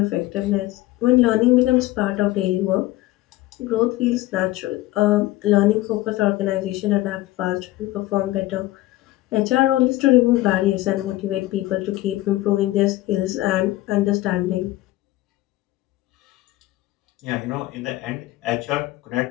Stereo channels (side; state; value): right; quieter; 17.1 dB